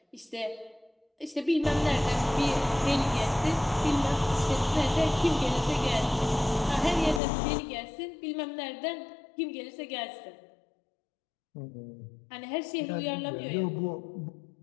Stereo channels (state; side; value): drops out; right; at 7.2 s